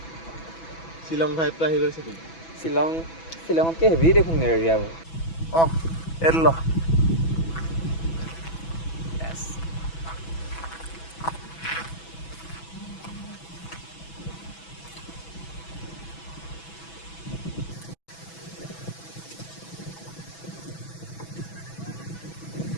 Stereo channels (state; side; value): late; right; 6.1 ms